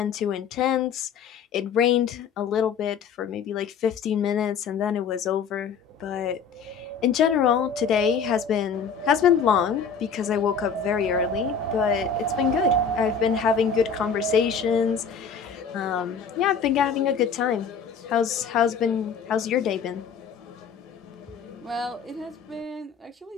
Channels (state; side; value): quieter; right; 6.1 dB